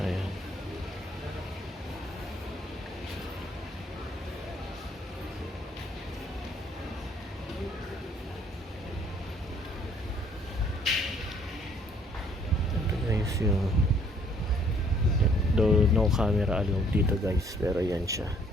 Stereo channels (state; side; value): normal; both; correlation 0.62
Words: Guys, yung though no camera allowed dito guys, pero yan siya.